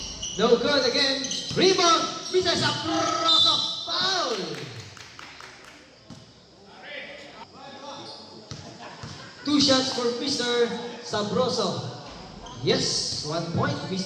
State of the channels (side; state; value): both; identical; correlation 1.00